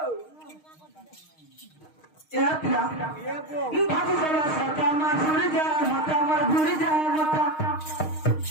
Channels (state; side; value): late; right; 6.5 ms